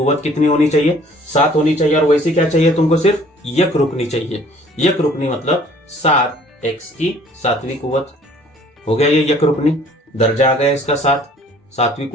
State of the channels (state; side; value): normal; both; correlation 0.55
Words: कितनी होनी चाहिए, 7 होनी चाहिए। और वैसे क्या चाहिए तुमको, सिर्फ यक रुकनी चाहिए। यक रुकनी मतलब 7 एक्स की 7वीं कुव्वत हो गया, ये यक रुकनी, दर्जा आ गया इसका 7, 7वीं